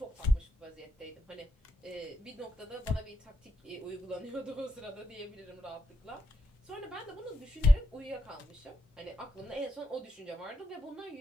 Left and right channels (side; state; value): both; normal; correlation 0.80